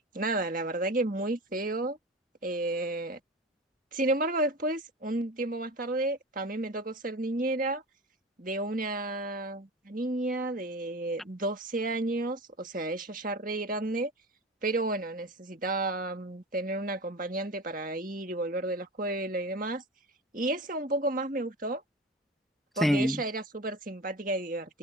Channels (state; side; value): normal; both; correlation 0.31